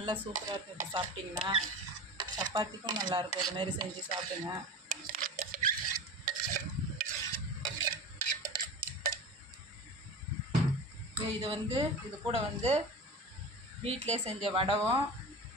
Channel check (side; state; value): both; normal; correlation 0.31